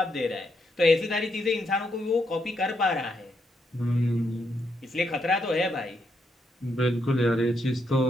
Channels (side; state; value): both; normal; correlation 0.78